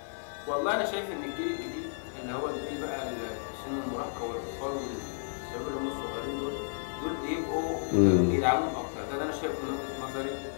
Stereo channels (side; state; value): right; silent; digital silence